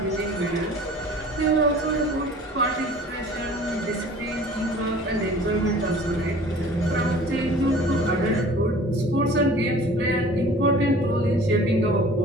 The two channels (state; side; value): normal; both; correlation 0.47